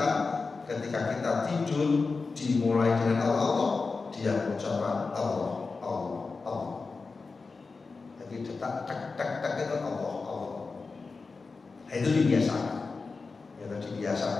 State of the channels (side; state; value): right; quieter; 4.3 dB